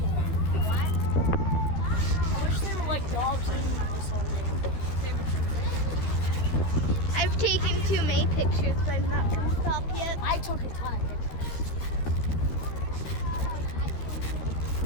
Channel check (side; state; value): right; late; 12 ms